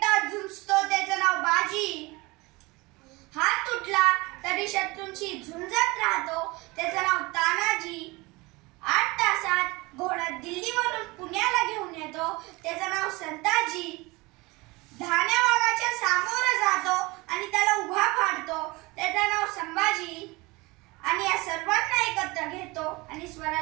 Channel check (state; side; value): quieter; left; 23.6 dB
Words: झुंजतो त्याचं नाव बाजी. हात तुटला तरी शत्रूंशी झुंजत राहतो त्याचं नाव तानाजी. 8 तासात घोडा दिल्लीवरून पुण्याला घेऊन येतो त्याचं नाव संताजी. धान्या वाघाच्या सामोरं जातो आणि त्याला उभा फाडतो त्याचं नाव संभाजी. आणि या सर्वांना एकत्र घेतो आणि